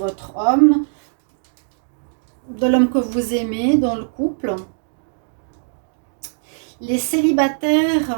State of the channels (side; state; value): left; silent; digital silence